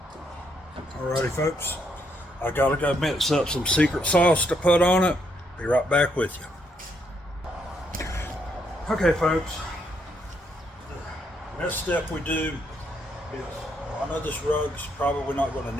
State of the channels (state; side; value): normal; both; correlation 0.74